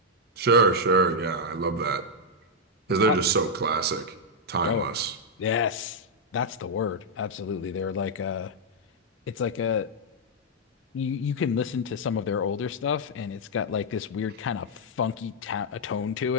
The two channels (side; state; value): both; normal; correlation -0.03